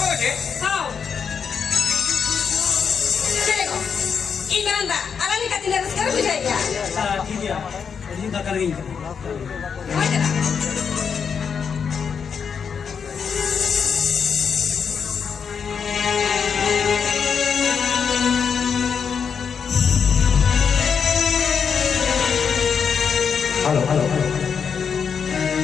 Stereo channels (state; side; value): quieter; right; 6.6 dB